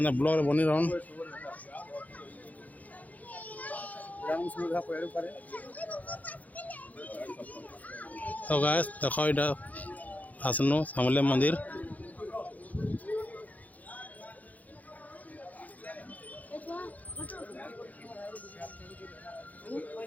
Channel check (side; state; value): right; late; 0.077 ms